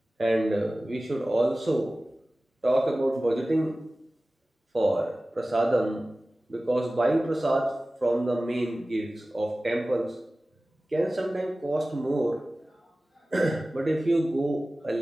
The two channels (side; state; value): both; normal; correlation 0.97